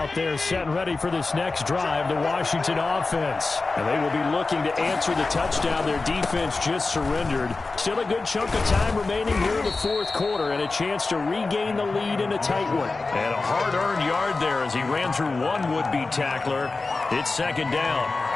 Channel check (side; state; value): right; quieter; 3.7 dB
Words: there set and ready for this next drive, the Washington offense. And they will be looking to answer the touchdown their defense just surrendered. Still a good chunk of time remaining here in the fourth quarter and a chance to regain the lead in a tight one. And a hard-earned yard there as he ran through one would-be tackler. It's second down.